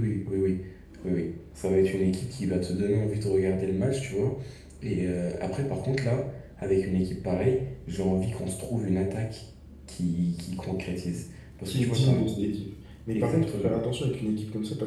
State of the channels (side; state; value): both; identical; correlation 1.00